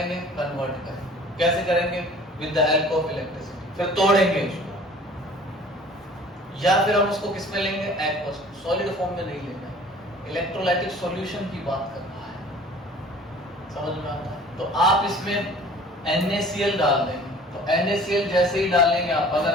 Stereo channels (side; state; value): both; normal; correlation 0.48